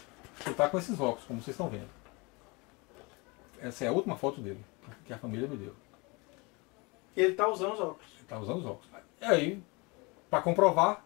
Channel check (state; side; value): quieter; right; 27.3 dB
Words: que está com esses óculos, como vocês estão vendo. Essa é a última foto dele, que a família me deu. E ele está usando os óculos. Ele está usando os óculos. E aí, para comprovar,